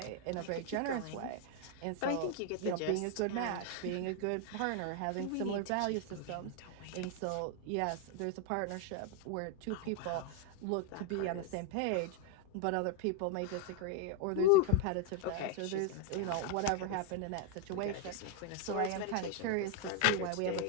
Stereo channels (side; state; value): both; different; correlation 0.01